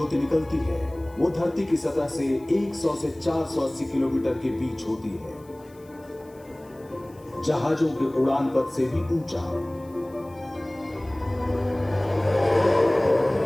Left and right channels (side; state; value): left; noise; hiss, 29 dB below the sound